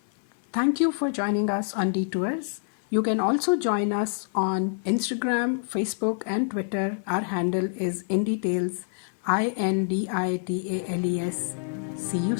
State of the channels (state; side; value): silent; right; 55 dB below the other